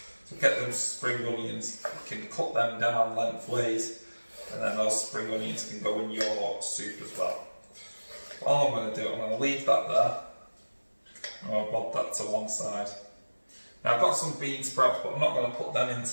So get them spring onions, you can cut them down lengthways, and then those spring onions can go in your soup as well. All I'm going to do, I'm going to leave that there. I'm going to bob that to one side. Now I've got some bean sprouts, but I'm not going to put them in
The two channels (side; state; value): both; inverted; correlation -1.00